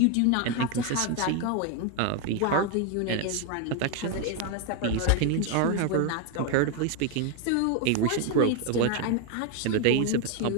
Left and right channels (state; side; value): different; both; correlation 0.01